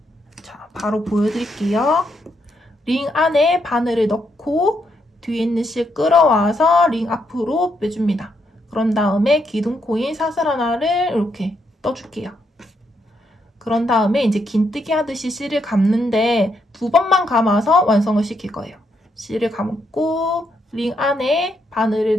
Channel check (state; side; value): normal; both; correlation 0.77